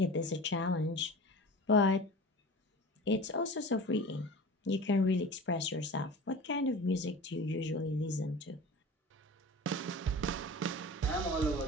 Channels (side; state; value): both; normal; correlation 0.36